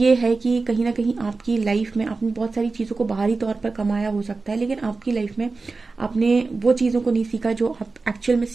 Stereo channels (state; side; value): quieter; left; 4.0 dB